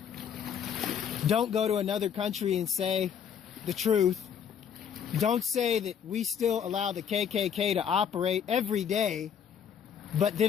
Don't go to another country and say the truth. Don't say that we still allow the KKK to operate every day, but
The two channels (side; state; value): right; quieter; 8.0 dB